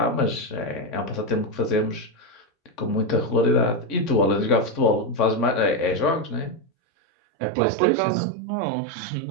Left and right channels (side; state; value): left; drops out; at 6.7 s